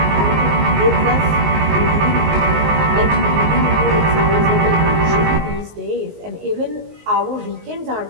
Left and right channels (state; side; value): late; left; 19 ms